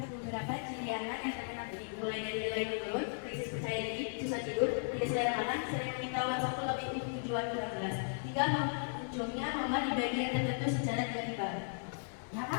beberapa ciri anak yang terkena bullying, mulai dari nilai menurun, krisis percaya diri, susah tidur, tidak selera makan, sering meminta uang saku lebih dari tujuan kurang jelas, hingga munculnya mama di bagian tertentu secara tiba-tiba. Ya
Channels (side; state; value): right; silent; digital silence